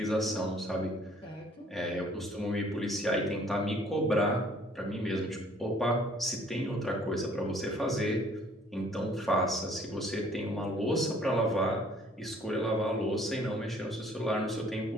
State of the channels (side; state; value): both; normal; correlation 0.58